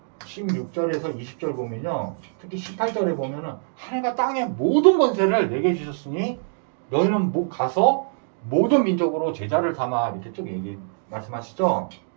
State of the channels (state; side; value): silent; left; digital silence